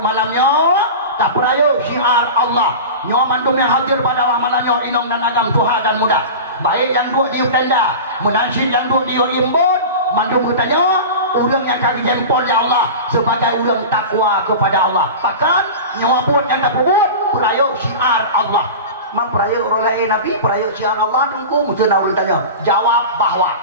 malamnya tak peraya syiar Allah. Nyawa mandum yang hadir pada malamnya inong dan agam Tuhan dan muda. Baik yang dua di tenda, menajid yang dua di imbun. Mandum bertanya orang yang kami jempol ya Allah sebagai orang takwa kepada Allah. Bahkan nyawa buat yang tak buat peraya syiar Allah. Memperaya orang lain Nabi peraya syiar Allah tunggu mesti nak tanya jawab bahawa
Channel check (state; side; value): inverted; both; correlation -0.30